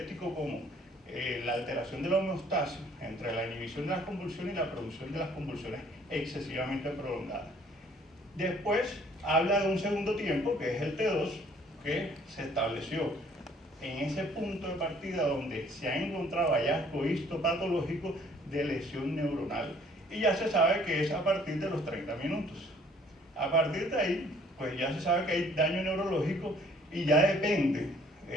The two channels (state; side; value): normal; both; correlation 0.59